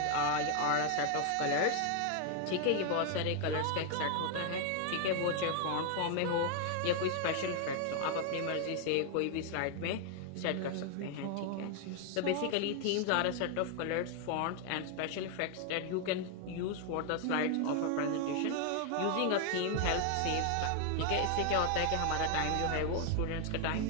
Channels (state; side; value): different; both; correlation 0.00